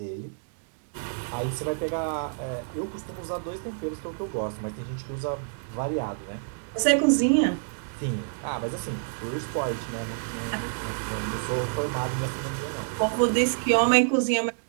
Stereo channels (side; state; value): left; silent; digital silence